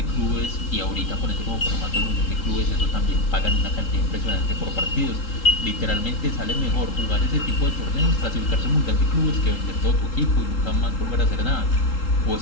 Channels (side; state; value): right; late; 3.8 ms